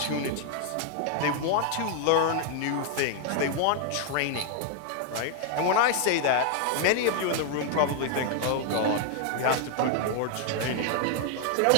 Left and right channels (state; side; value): different; both; correlation 0.00